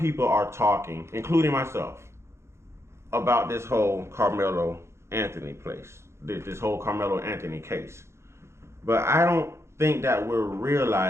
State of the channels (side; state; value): left; late; 0.13 ms